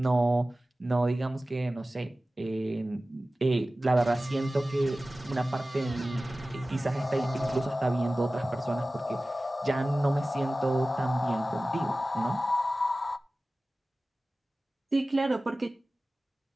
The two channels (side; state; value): both; normal; correlation 0.97